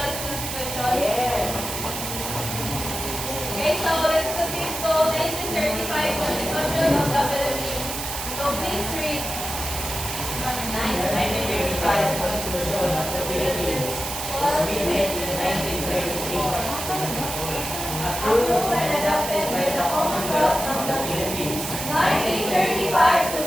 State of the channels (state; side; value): noise; right; hiss, 5 dB below the sound